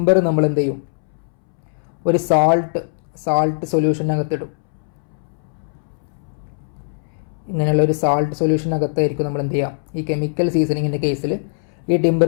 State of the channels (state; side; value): silent; right; 65 dB below the other